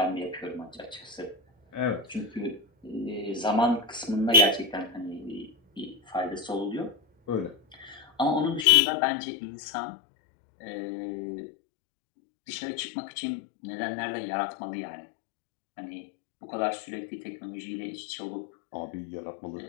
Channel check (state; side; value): drops out; right; at 8.7 s